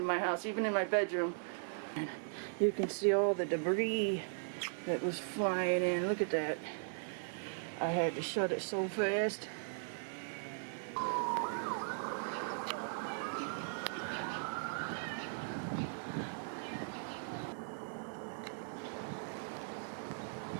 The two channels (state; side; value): silent; left; digital silence